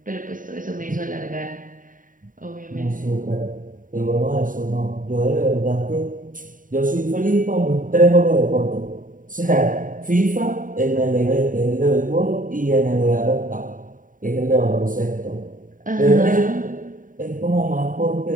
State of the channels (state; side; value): late; left; 0.39 ms